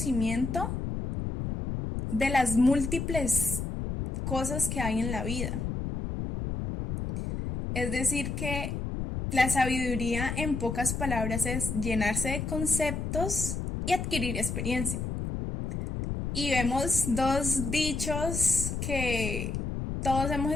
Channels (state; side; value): noise; left; rumble, 3 dB below the sound